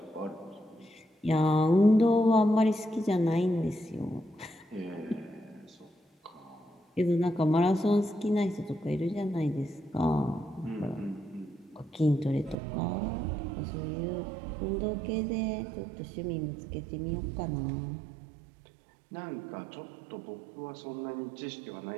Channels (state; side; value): drops out; left; at 12.6 s